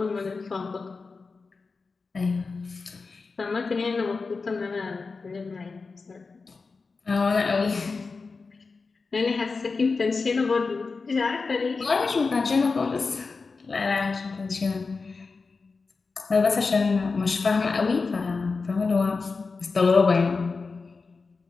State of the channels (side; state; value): right; quieter; 4.4 dB